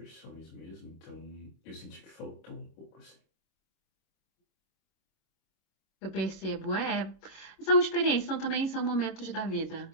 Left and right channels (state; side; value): late; right; 26 ms